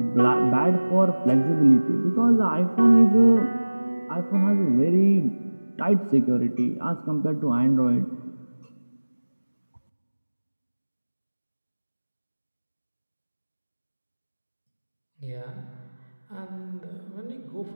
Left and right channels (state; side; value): inverted; both; correlation -1.00